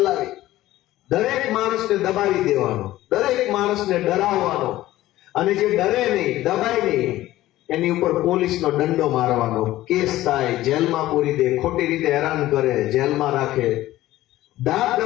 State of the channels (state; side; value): quieter; right; 15.6 dB